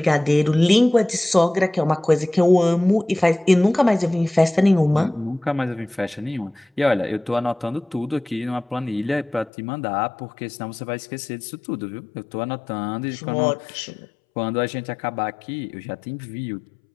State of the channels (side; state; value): right; drops out; at 9.5 s